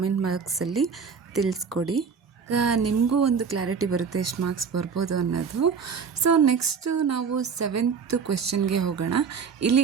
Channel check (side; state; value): left; quieter; 6.0 dB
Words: ಬಾಕ್ಸಲ್ಲಿ ತಿಳಿಸ್ಕೊಡಿ. ಈಗ ನಿಮಗೂ ಒಂದು ಕ್ಲಾರಿಟಿ ಬರುತ್ತೆ ಎಷ್ಟು ಮಾರ್ಕ್ಸ್ ಬರ್ಬೋದು ಅನ್ನೋದು. ಸೊ ನೆಕ್ಸ್ಟು ನಾವು 7th ಕ್ವೆಶ್ಚನ್ಗೆ ಹೋಗೋಣ.